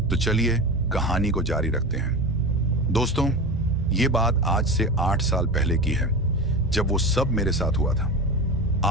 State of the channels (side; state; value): both; normal; correlation 0.26